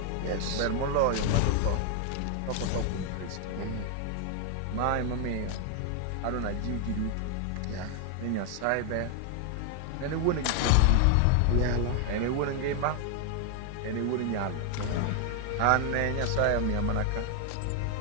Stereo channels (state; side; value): different; both; correlation 0.00